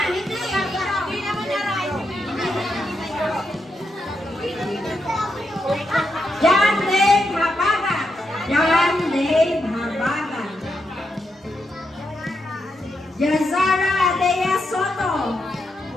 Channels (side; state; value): both; normal; correlation 0.83